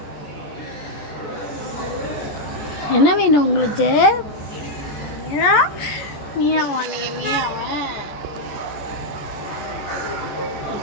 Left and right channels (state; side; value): late; right; 14 ms